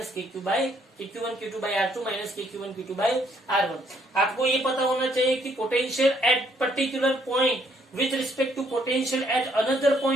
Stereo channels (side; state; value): both; normal; correlation 0.68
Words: KQ1 Q2 by R2 minus KQ1 Q2 by R1। आपको ये पता होना चाहिए कि potential at particular point with respect to potential at another